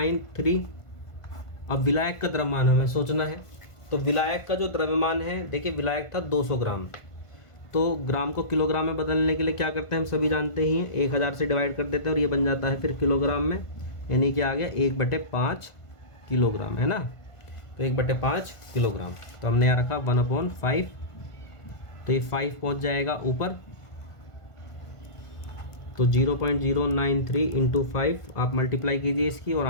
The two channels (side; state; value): right; late; 1.5 ms